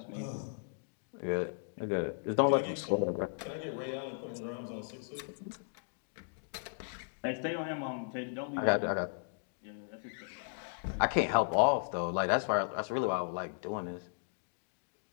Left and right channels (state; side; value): silent; right; digital silence